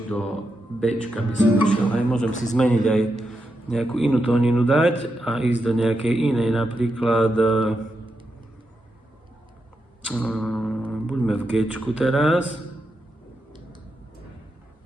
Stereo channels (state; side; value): normal; both; correlation 0.86